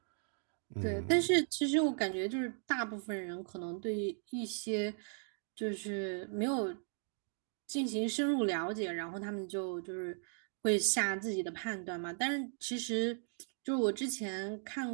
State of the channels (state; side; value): silent; left; digital silence